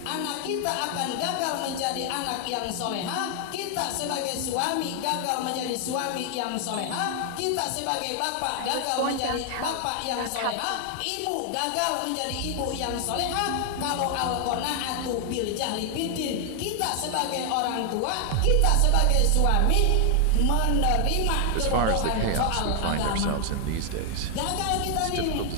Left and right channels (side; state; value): both; different; correlation 0.00